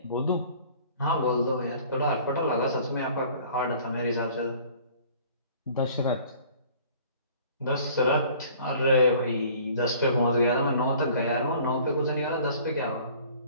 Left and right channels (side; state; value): both; inverted; correlation -0.51